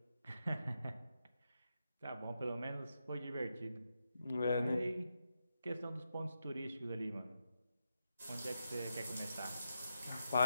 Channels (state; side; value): inverted; both; correlation -0.86